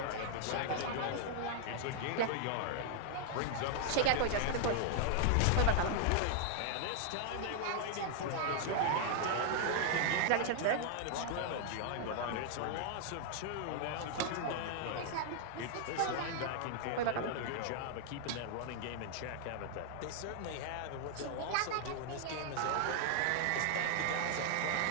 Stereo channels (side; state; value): both; different; correlation -0.01